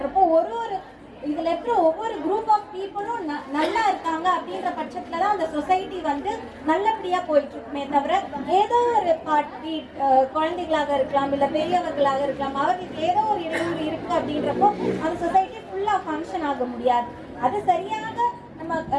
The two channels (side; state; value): both; identical; correlation 1.00